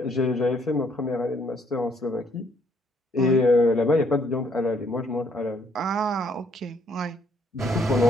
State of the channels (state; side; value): normal; both; correlation 0.67